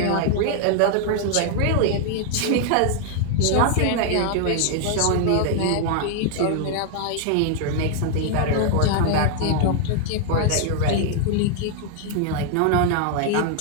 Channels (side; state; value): both; different; correlation 0.00